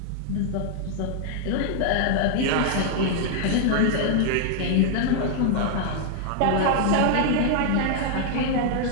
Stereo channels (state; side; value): different; both; correlation 0.00